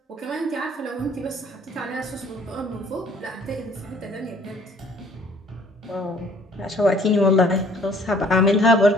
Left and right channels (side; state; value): both; normal; correlation 0.57